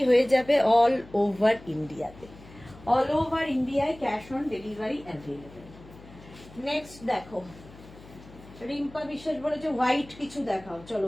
হয়ে যাবে অল ওভার ইন্ডিয়াতে। অল ওভার ইন্ডিয়ায় cash on delivery available. Next দেখো, রিম্পা বিশ্বাস বলেছে হোয়াইট কিছু দেখাও।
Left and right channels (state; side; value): noise; left; hum, 20 dB below the sound